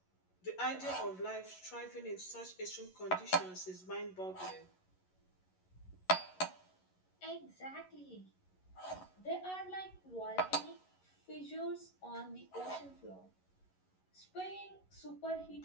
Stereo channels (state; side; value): late; right; 11 ms